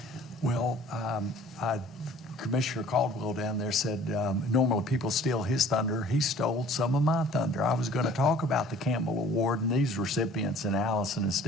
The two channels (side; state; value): both; normal; correlation 0.50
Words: Well, Commissioner Caldwell down there said normally people steal his thunder. He stole some of my thunder. I was going to talk about the Campbell Award and these recipients, and Allison and